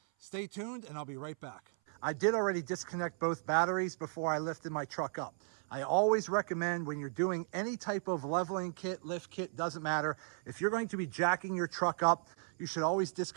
stay tuned and I'll be right back. I did already disconnect both batteries before I lifted my truck up. I always recommend, when you're doing any type of leveling kit, lift kit, doesn't matter, if you're going to be jacking your truck up, you should always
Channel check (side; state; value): left; silent; 54 dB below the other